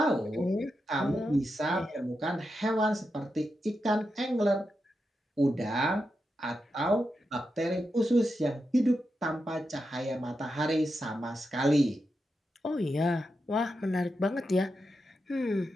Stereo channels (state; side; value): normal; both; correlation 0.87